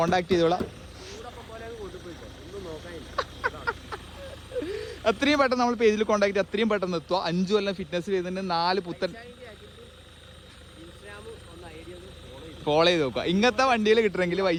ചെയ്തോളാം. എത്രയും പെട്ടെന്ന് നമ്മൾ പേജിൽ കോണ്ടാക്ട് ചെയ്ത് അത്രയും പെട്ടെന്ന് എത്തുക. 5 കൊല്ലം ഫിറ്റ്നസ് ചെയ്തിട്ട് 4 പുത്തൻ ഫോളോ ചെയ്ത് നോക്കുക. ഇങ്ങനത്തെ വണ്ടിയിൽ കിട്ടണമെങ്കിൽ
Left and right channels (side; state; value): both; identical; correlation 1.00